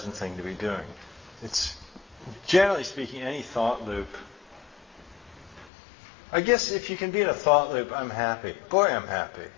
thing to be doing. It's, generally speaking, any thought loop. I guess if you can be in a thought loop, I'm happy. Boy, I'm happy.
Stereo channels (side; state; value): right; drops out; at 5.7 s